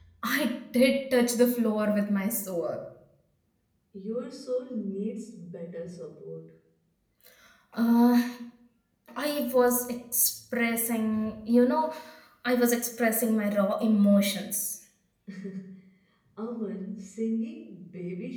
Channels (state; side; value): identical; both; correlation 1.00